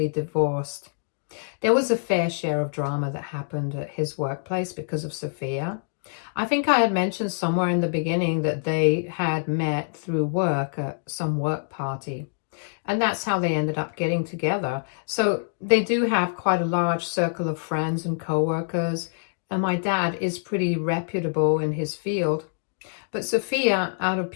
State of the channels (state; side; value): silent; right; digital silence